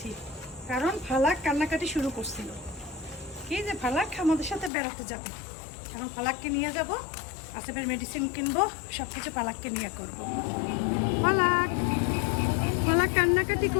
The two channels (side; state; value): right; drops out; at 4.7 s